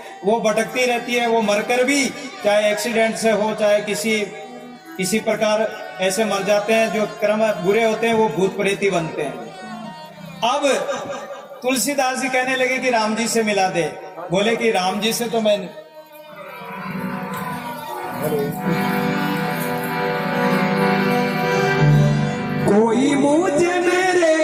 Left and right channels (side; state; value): both; identical; correlation 1.00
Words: वो भटकती रहती है। वो मरकर भी, चाहे एक्सीडेंट से हो, चाहे किसी प्रकार ऐसे मर जाते हैं। जो कर्म बुरे होते हैं वो भूत प्रेत ही बनते हैं। अब तुलसीदास जी कहने लगे कि राम जी से मिला दे। बोले कि राम जी से तो मैं कोई मुझे